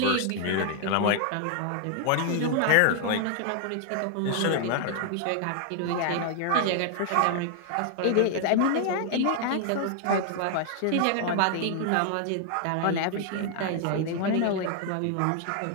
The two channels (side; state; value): both; different; correlation 0.00